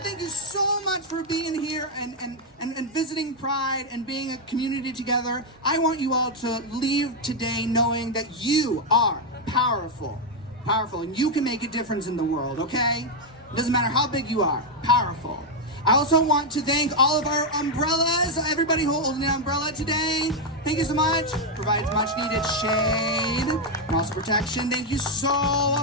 Thank you so much for being here and visiting Pride and being a community together. I want you all to leave today knowing that you are powerful, and you can make a difference in the world, okay? It doesn't matter how big you are, powerful. I also want to thank all of our umbrellas, everybody holding an umbrella today. Thank you so much. Provides much needed shade and also protection. Thank you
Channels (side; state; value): both; normal; correlation 0.01